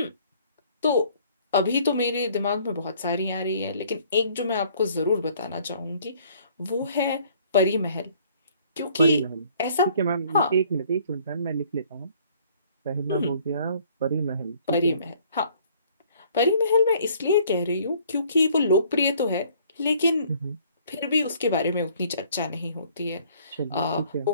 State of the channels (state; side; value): inverted; both; correlation -0.59